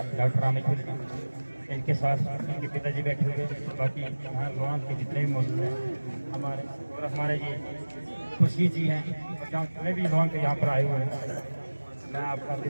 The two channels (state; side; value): inverted; both; correlation -1.00